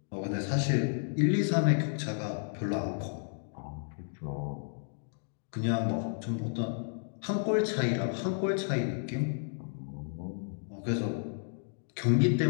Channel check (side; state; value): right; silent; digital silence